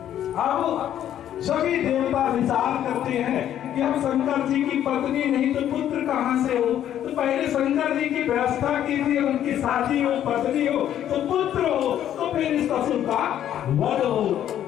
अब सभी देवता विचार करते हैं कि हम शंकर जी की पत्नी नहीं तो पुत्र कहां से हो, तो पहले शंकर जी की व्यवस्था कीजिए, उनकी शादी हो, पत्नी हो तो पुत्र हो, तो फिर इस असुर का वध हो।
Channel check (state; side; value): quieter; right; 10.9 dB